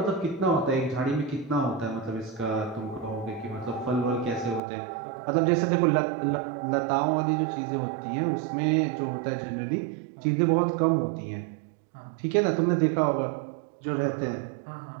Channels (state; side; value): drops out; left; at 4.6 s